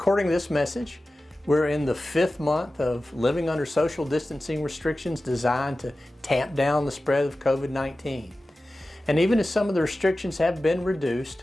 this message, we're in the 5th month of living under social distancing restrictions designed to tamp down the spread of COVID-19. And even as some of the restrictions have been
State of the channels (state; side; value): normal; both; correlation 0.95